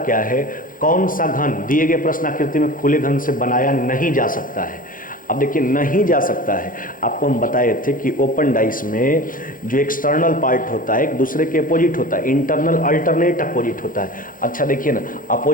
है, कौन सा घन दिए गए प्रश्न आकृति में खुले घन से बनाया नहीं जा सकता है। अब देखिए नहीं जा सकता है। आपको हम बताए थे कि ओपन डाइस में जो एक्सटर्नल पार्ट होता है एक दूसरे के अपोजिट होता है, इंटरनल अल्टरनेट अपोजिट होता है। अच्छा देखिए ना,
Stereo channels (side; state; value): right; late; 0.40 ms